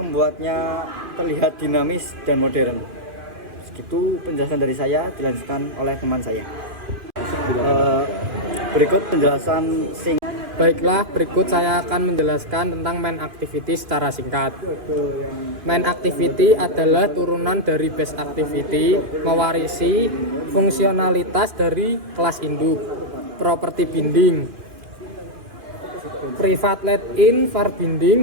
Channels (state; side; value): late; left; 2.5 ms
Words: terlihat dinamis dan modern. Segitu penjelasan dari saya, dilanjutkan oleh teman saya. Berikut penjelasan Baiklah, berikut saya akan menjelaskan tentang main activity secara singkat. Main activity adalah turunan dari base activity, mewarisi fungsionalitas dari kelas induk. Properti binding. Private let-in var